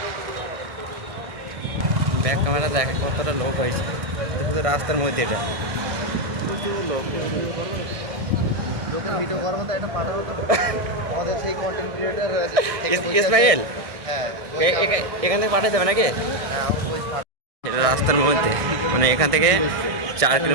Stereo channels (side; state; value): left; late; 1.6 ms